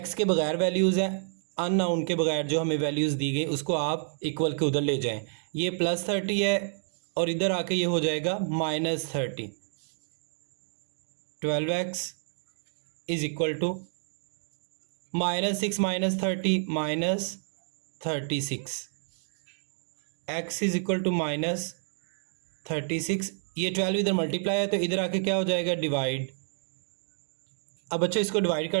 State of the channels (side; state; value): left; silent; digital silence